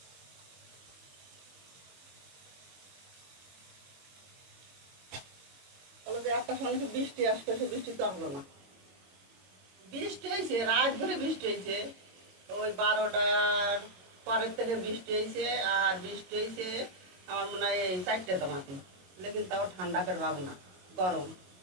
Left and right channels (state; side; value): late; left; 22 ms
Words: একটা সময় বৃষ্টি আসতে, বৃষ্টি তো আসলো না। বৃষ্টি হয়েছে, রাত ভরে বৃষ্টি হয়েছে, ওই 12টার পরের থেকে বৃষ্টি হয়েছে। আর বৃষ্টি হয়েছে আমার মনে হয় এই 4টে তোমাতে, লেকিন তাও ঠান্ডা করে ভাব না, গরম।